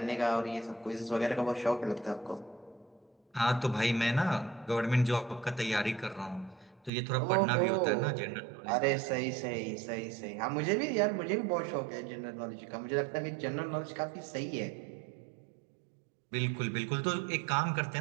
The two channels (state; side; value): drops out; left; at 6.9 s